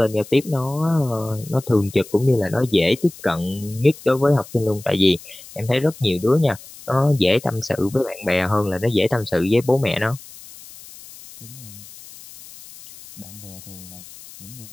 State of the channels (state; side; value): noise; left; hiss, 18 dB below the sound